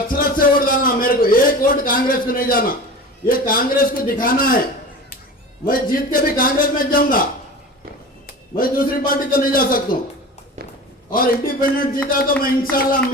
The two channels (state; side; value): normal; both; correlation 0.34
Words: से वोट डालना, मेरे को 1 वोट कांग्रेस को नहीं जाना। ये कांग्रेस को दिखाना है, मैं जीत के भी कांग्रेस में जाऊंगा, मैं दूसरी पार्टी तो नहीं जा सकता हूं। और इंडिपेंडेंट जीता तो मैं इंशाल्लाह